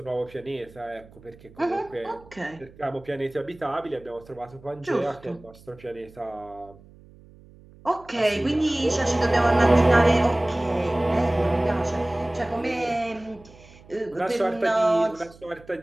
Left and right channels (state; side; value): noise; right; hum, 23 dB below the sound